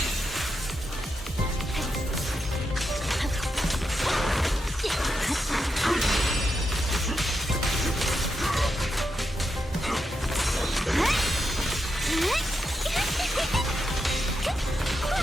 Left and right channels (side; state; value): both; normal; correlation 0.85